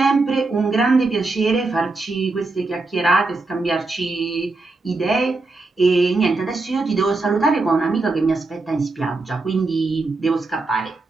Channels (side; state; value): left; quieter; 3.4 dB